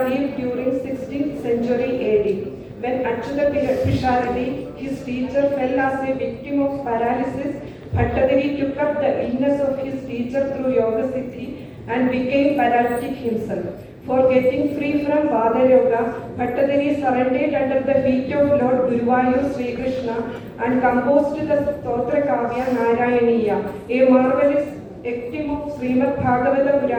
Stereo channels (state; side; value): identical; both; correlation 1.00